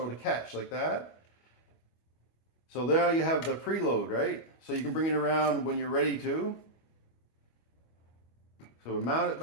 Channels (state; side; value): late; right; 25 ms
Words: to catch, like that. So there you have the preload, right? So you can bring it around when you're ready to. So we mount it